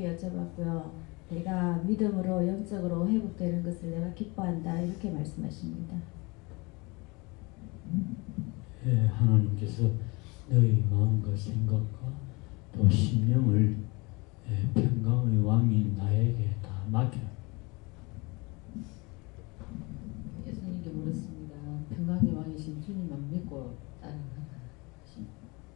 여쭤봤고요. 내가 믿음으로 영적으로 회복되는 것을 내가 기뻐한다 이렇게 말씀하십니다. 예, 하나님께서 너희 마음과 생각과 또 심령을 평강의 왕인 나에게 다 맡겨라. 예수님께 물었습니다. 평강의 왕이신 주님만 믿고 따르는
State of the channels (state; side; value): quieter; right; 26.5 dB